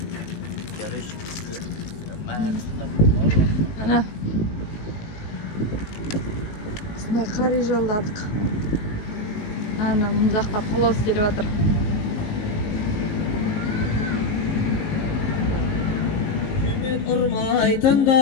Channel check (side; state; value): right; late; 18 ms